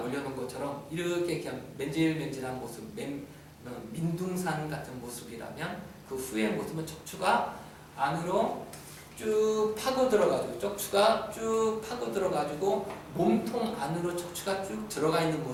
올려놓은 것처럼 이렇게 그냥 맨질맨질한 모습, 민둥산 같은 모습이라면 그 후의 모습은 척추가 안으로 쭉 파고 들어가지고 척추가 쭉 파고 들어가지고 몸통 안으로 척추가 쭉 들어가 있는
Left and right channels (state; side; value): identical; both; correlation 1.00